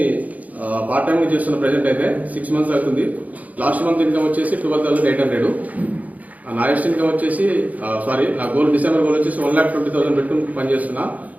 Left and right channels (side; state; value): left; late; 0.075 ms